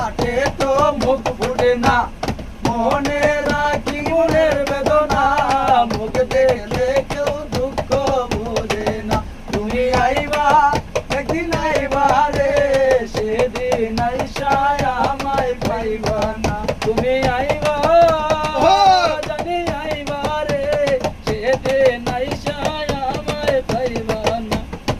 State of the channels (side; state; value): both; identical; correlation 1.00